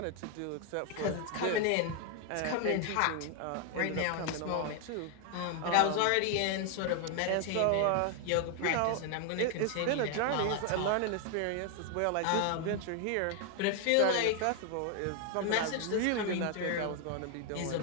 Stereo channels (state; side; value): different; both; correlation 0.00